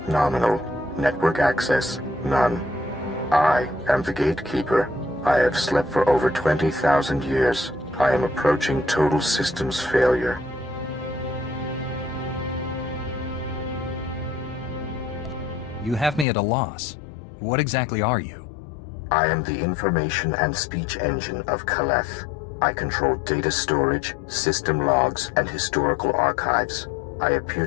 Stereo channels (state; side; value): drops out; right; at 16.2 s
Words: nominal. Network access none. I am the gatekeeper. I have slept for over 20,000 years. I am approaching total systems failure. You have me at a loss. What exactly are you? I am the information and speech engine of Kaleth. I control data storage, system logs, and historical archives. I appear